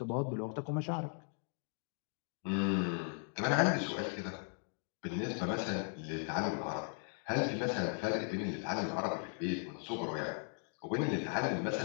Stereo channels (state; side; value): silent; right; 53 dB below the other